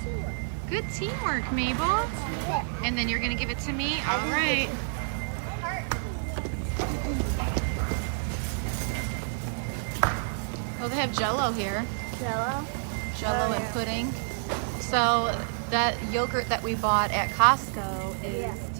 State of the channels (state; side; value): silent; left; digital silence